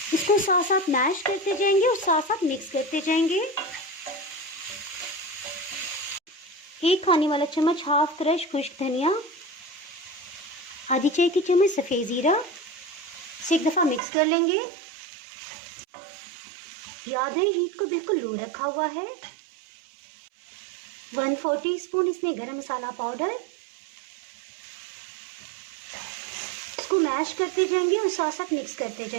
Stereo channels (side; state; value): left; drops out; at 14.0 s